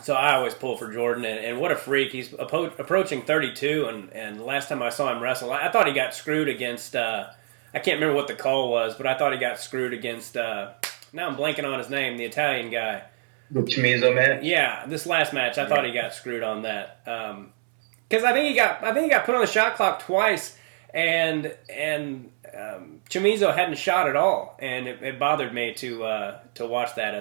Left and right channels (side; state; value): left; silent; 61 dB below the other